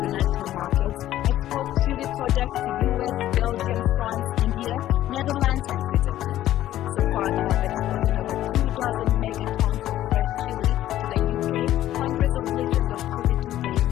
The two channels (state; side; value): quieter; right; 13.3 dB